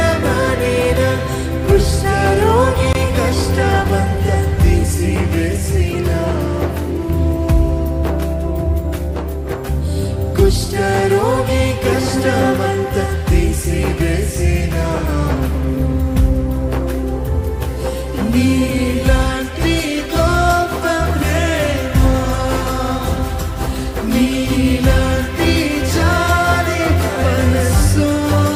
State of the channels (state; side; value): identical; both; correlation 1.00